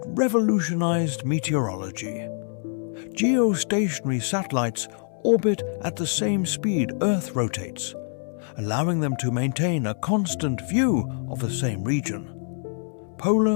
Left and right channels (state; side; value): silent; right; 62 dB below the other